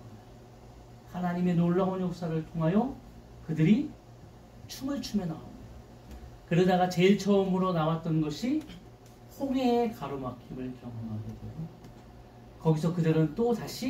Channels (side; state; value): both; identical; correlation 1.00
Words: 하나님의 놀라운 역사를 통하여 그들이 춤을 추며 나옵니다. 그러다가 제일 처음으로 나왔던 것이 홍해의 가로막힘을 경험하게 되고 거기서 그들은 또